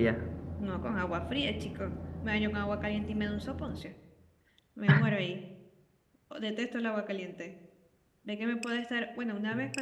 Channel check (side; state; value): both; identical; correlation 1.00